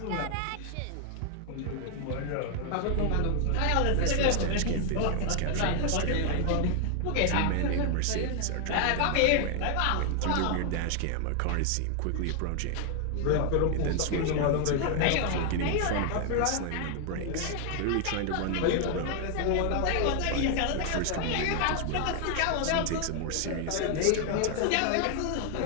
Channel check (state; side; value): different; both; correlation 0.00